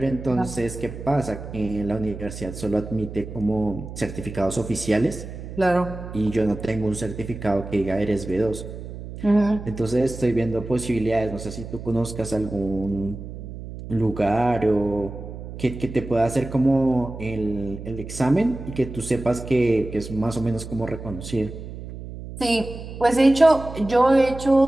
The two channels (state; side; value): noise; right; hum, 11 dB below the sound